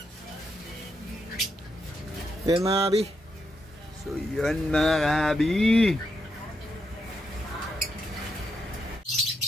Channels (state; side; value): normal; both; correlation 0.81